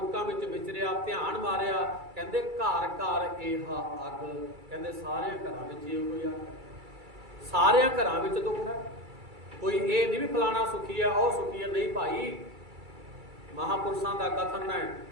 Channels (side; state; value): left; late; 2.3 ms